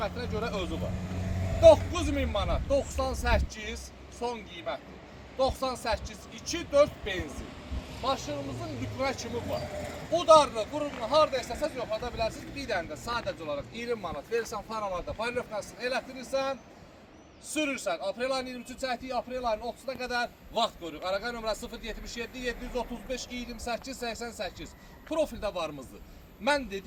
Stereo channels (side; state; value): both; identical; correlation 1.00